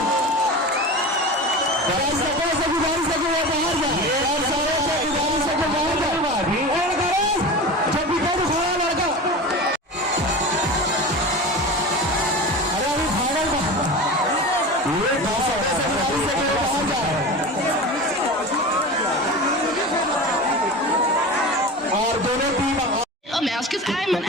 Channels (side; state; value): both; normal; correlation 0.30